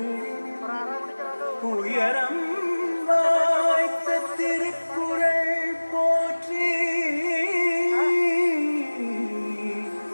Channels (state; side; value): inverted; both; correlation -1.00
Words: உயரம் வாய்த்த திருக்குறள் போற்றி